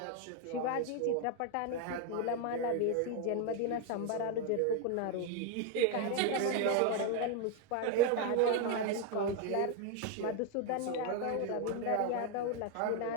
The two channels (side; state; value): both; different; correlation 0.01